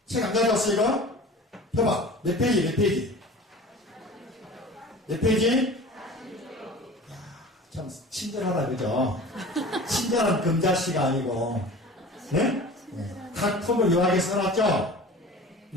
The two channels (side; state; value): both; normal; correlation 0.40